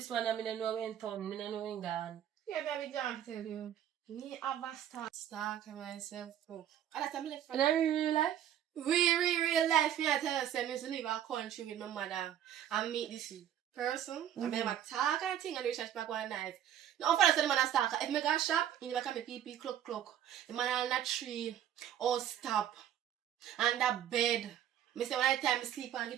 one and me don't know when turn, me don't know when gone. Yeah, baby, John, tell you. Me have a stalk myself. Oh. And that's a left. In a real life? Real life, me I tell you, say, me used to leave a country with my mother and meet this person. I mean, I talk and thing and we chat back one night. Now, for the man a stalker, if me go shop, in the back of my pee clock. The man on that tree, or stop, and that bed. Me say when I time me sleep and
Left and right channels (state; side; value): quieter; left; 10.6 dB